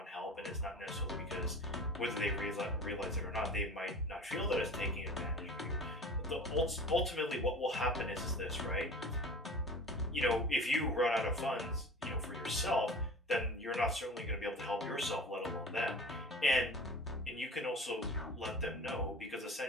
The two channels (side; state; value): both; normal; correlation 0.39